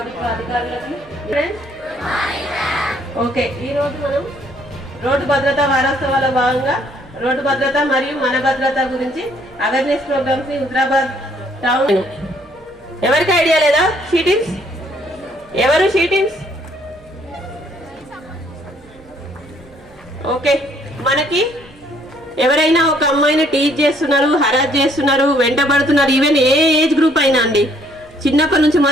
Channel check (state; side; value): noise; right; hum, 29 dB below the sound